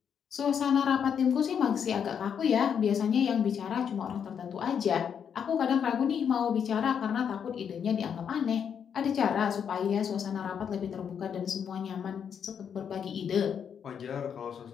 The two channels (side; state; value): right; quieter; 7.7 dB